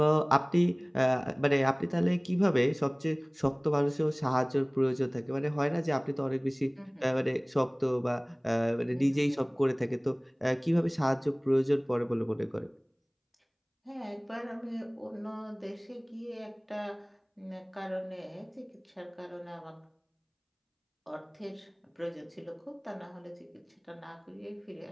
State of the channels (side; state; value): both; identical; correlation 1.00